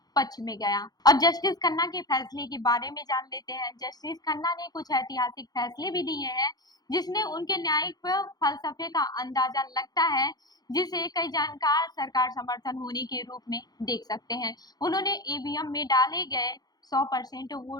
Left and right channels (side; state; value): right; late; 0.19 ms